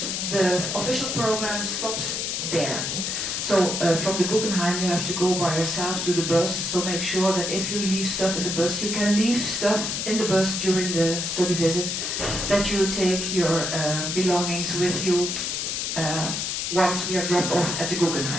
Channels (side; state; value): left; noise; hiss, 2 dB below the sound